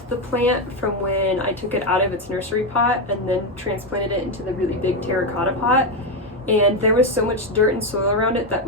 the plant from when I took it out of its nursery pot and then transplanted it into the really big terracotta pot. And there was so much dirt and soil around it that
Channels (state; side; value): normal; both; correlation 0.08